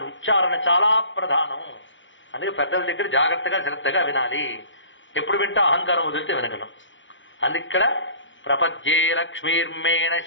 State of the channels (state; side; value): late; right; 0.55 ms